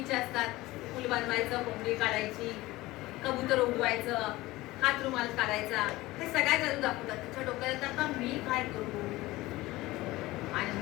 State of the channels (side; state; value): right; quieter; 18.9 dB